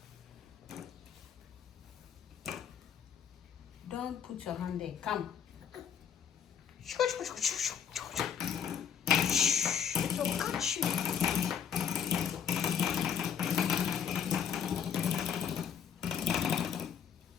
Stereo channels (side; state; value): right; quieter; 8.0 dB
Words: Don't put your hand there. Come. It will catch you.